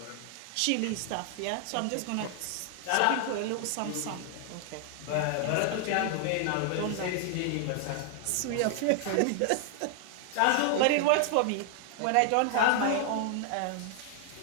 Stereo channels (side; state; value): both; different; correlation 0.00